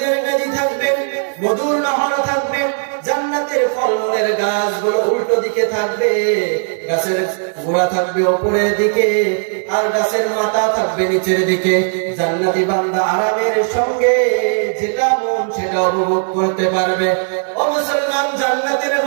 নদী থাকবে, মধুর নহর থাকবে, জান্নাতের ফলমূলের গাছগুলো উল্টো দিকে থাকবে, গাছের গোড়া থাকবে উপরের দিকে আর গাছের মাথা থাকবে নিচের দিকে। জান্নাতি বান্দা আরামের সঙ্গে যেটা মন সেটা উপভোগ করতে পারবে। ও মুসলমান, জান্নাতের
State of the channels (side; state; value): left; silent; digital silence